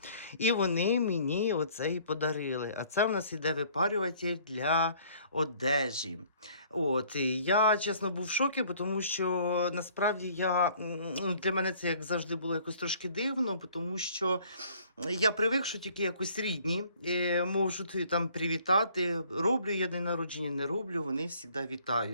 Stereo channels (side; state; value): both; inverted; correlation -0.57